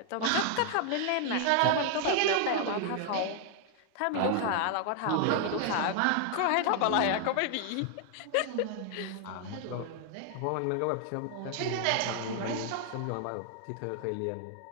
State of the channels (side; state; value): both; different; correlation 0.00